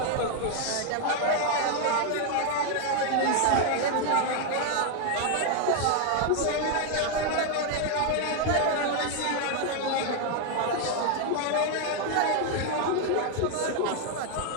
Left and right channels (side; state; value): both; different; correlation 0.01